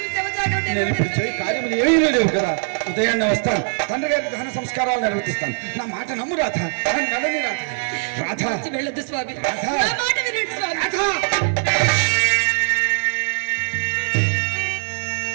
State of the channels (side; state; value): left; silent; 62 dB below the other